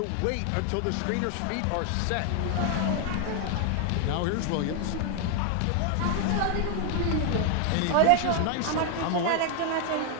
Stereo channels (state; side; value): different; both; correlation 0.00